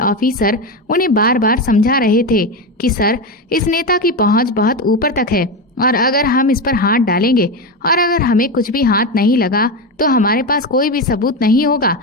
उन्हें बार बार समझा रहे थे कि सर, इस नेता की पहुंच बहुत ऊपर तक है और अगर हम इस पर हाथ डालेंगे और अगर हमें कुछ भी हाथ नहीं लगा तो हमारे पास कोई भी सबूत नहीं होगा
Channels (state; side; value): normal; both; correlation 0.15